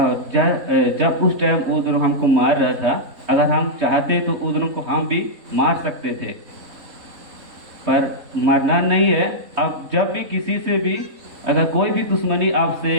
जब उस टाइम वो दोनों हमको मार रहा था, अगर हम चाहते तो उस दोनों को हम भी मार सकते थे, पर मरना नहीं है। अब जब भी किसी से भी अगर कोई भी दुश्मनी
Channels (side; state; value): left; late; 3.6 ms